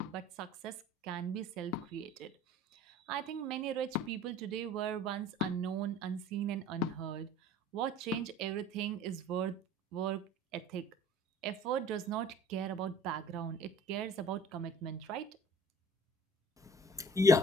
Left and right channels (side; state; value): both; normal; correlation 0.49